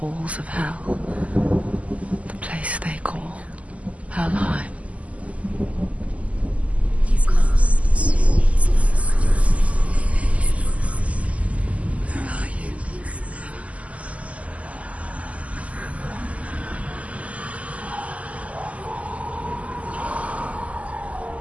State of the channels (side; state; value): left; late; 0.068 ms